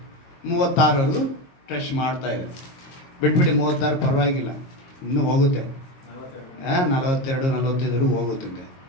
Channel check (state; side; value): late; right; 22 ms